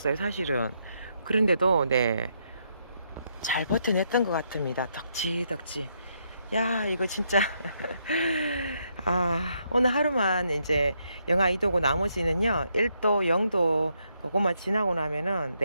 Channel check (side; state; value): both; inverted; correlation -0.77